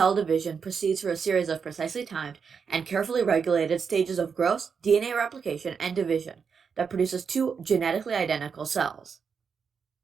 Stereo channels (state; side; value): quieter; left; 6.1 dB